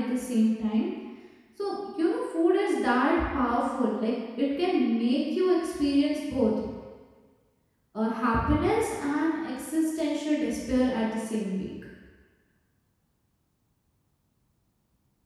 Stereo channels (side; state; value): both; identical; correlation 1.00